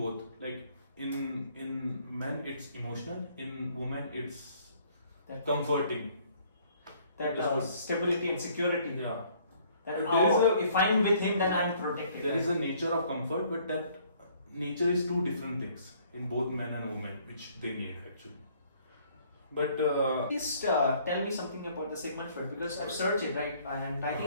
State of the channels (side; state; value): both; inverted; correlation -0.61